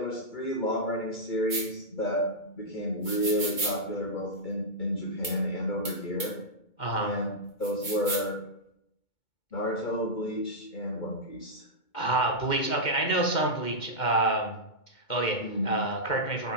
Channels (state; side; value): late; right; 2.2 ms